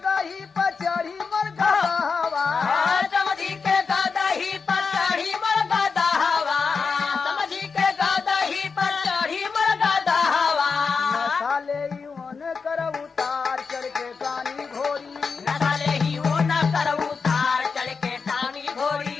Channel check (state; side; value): quieter; right; 5.1 dB